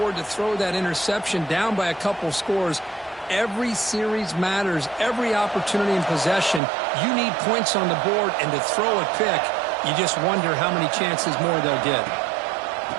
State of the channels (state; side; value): drops out; left; at 6.6 s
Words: to throw that interception down by a couple scores. Every series matters. Every opportunity in possession, you need points on the board, and to throw a pick, you just wonder how many chances more they'll get.